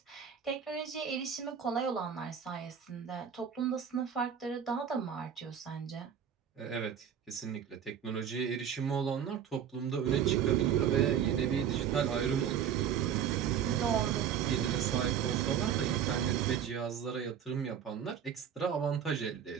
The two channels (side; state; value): left; quieter; 8.5 dB